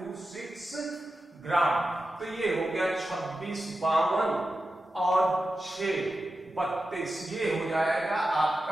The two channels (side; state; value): both; normal; correlation 0.91